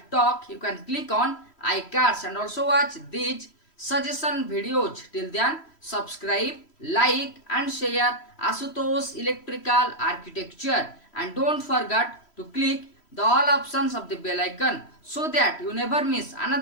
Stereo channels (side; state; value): right; late; 3.1 ms